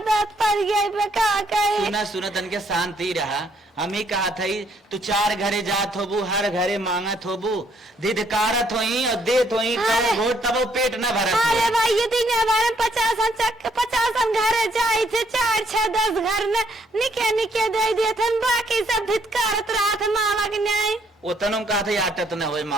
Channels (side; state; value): both; normal; correlation 0.68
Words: पड़ गई पे का कहे सुना तन के शांति रहा। हम ही कहा था तू 4 घरे जात होबू हर घरे मांगत होबू धिधकारत होई और देत होई अरे। कब घोट तब वो पेट न भरत अरे हो। भाई ये दिन हमारे 50 घरे जाए थे 4 6 10 घर में निके दे दिए थे बाकी सब धिक्कारत रहा था मावा के न्याय उतनों कहा था आटत न हो